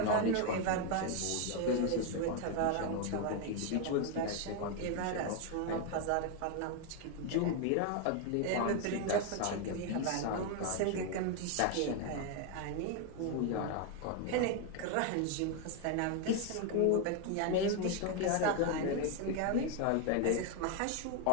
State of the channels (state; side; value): different; both; correlation 0.01